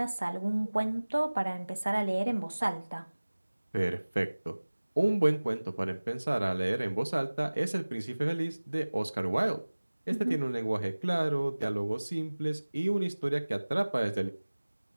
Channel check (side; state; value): both; inverted; correlation -1.00